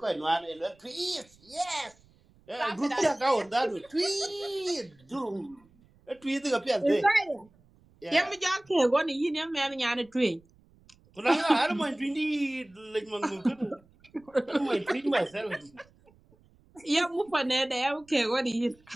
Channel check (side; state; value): right; noise; rumble, 30 dB below the sound